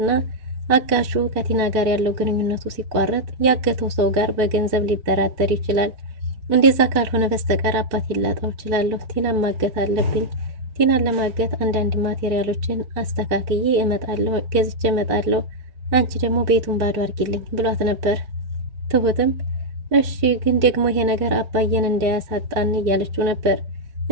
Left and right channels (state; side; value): late; left; 4.6 ms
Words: አጋሹ ከቲና ጋር ያለው ግንኙነቱ ሲቋረጥ ያገተው ሰው ጋር በገንዘብ ሊደራደር ይችላል እንደዛ ካልሆነ በስተቀር አባት ይላጣው ይችላል ቲናን ማገት አለብኝ ቲናን ለማገት አንዳንድ ማቴሪያሎችን አስተካክዬ እመጣለሁ ገዝቼ እመጣለሁ አንቺ ደግሞ ቤቱን ባዶ አድርጊልኝ ብሏት ነበር ትሁትም እሺ ግን ደግሞ ይሄ ነገር አባዬን እንዳያሳጣን እያለችው ነበር